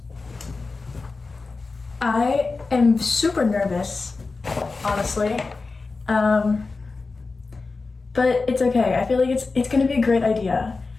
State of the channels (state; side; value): quieter; right; 4.0 dB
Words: I am super nervous, honestly, but it's okay. I feel like it's gonna be a great idea.